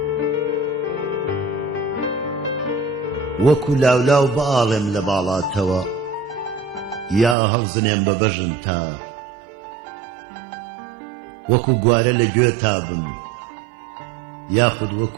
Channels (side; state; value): left; drops out; at 7.4 s